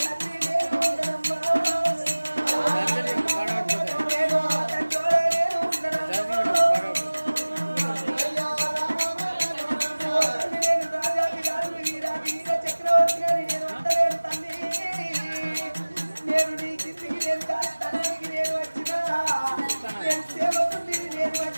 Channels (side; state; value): both; inverted; correlation -1.00